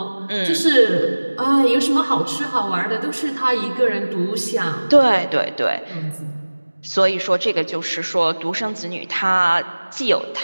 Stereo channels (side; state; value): both; inverted; correlation -1.00